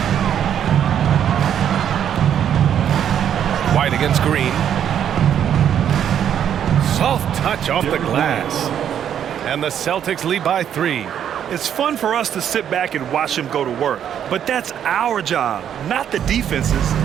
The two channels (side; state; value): left; quieter; 9.4 dB